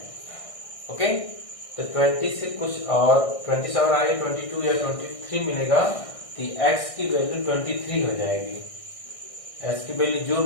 ओके, तो 20 से कुछ और 20 से और आगे 22 या 23 मिलेगा, तो x की वैल्यू 23 हो जाएगी। x की वैल्यू जो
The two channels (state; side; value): late; right; 1.6 ms